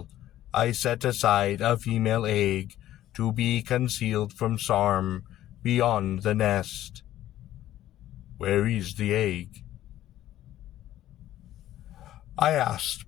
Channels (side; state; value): right; quieter; 13.3 dB